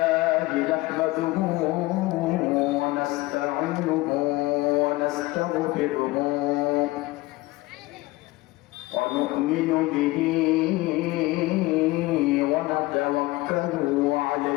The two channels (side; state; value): right; quieter; 20.1 dB